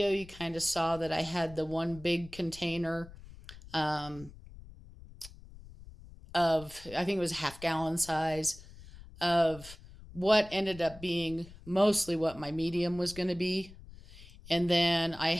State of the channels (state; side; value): noise; left; rumble, 18 dB below the sound